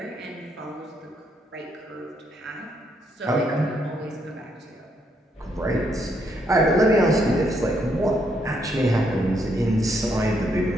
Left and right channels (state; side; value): normal; both; correlation 0.75